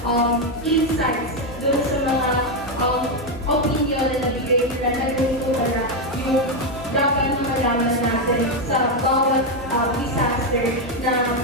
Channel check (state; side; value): normal; both; correlation 0.05